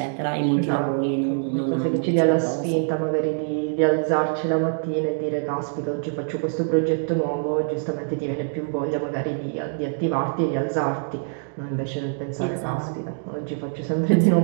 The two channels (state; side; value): silent; left; digital silence